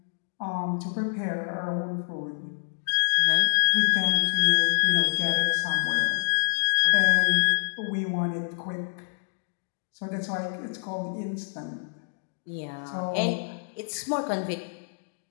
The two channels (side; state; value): right; silent; digital silence